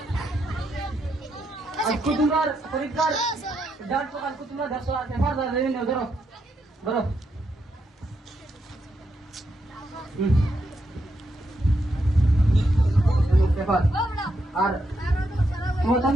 আজকে তোমার পরীক্ষার ডাল তো কালকে তোমরা 100 পেপার দেবে না ধরো ধরো পেপার আর তোমার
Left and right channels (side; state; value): both; normal; correlation 0.81